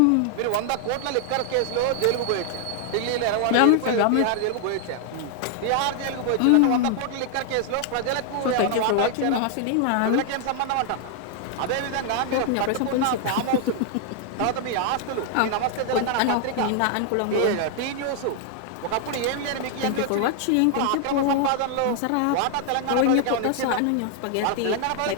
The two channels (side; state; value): both; different; correlation 0.00